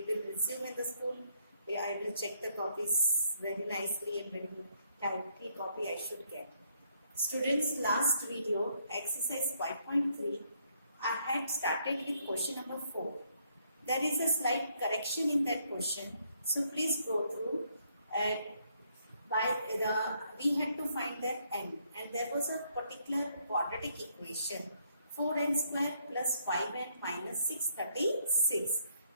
resume in the school. I will check the copies very nicely and very tightly copy I should get. Students, last video, exercise 5.3, I had started with question number 4. There is a slight correction in that question. So please go through. We had to find that n, and there was a particular quadratic equation 4n square plus 5n minus 636.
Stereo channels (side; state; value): both; inverted; correlation -0.71